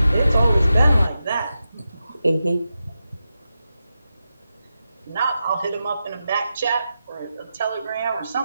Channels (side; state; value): both; inverted; correlation -0.90